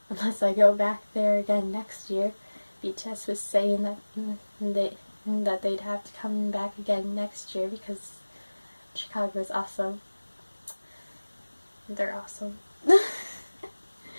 Unless I go back there again next year. BTS was saying that they'd have to come back again next year because Chicago is awesome. They're awesome.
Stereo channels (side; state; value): both; inverted; correlation -1.00